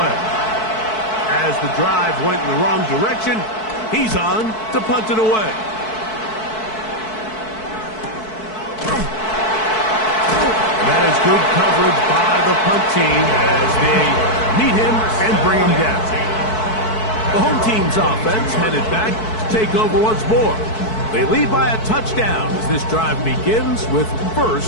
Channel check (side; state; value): right; late; 4.6 ms